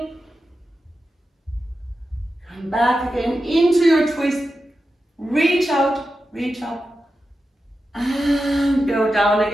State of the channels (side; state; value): both; normal; correlation 0.91